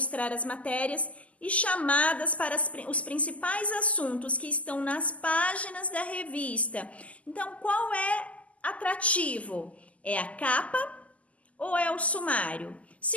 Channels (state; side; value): late; right; 0.069 ms